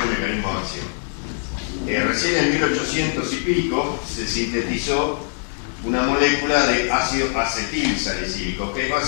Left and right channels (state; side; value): silent; right; digital silence